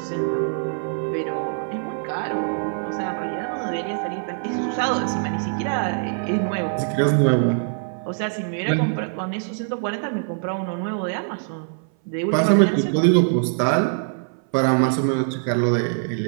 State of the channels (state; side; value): silent; left; 58 dB below the other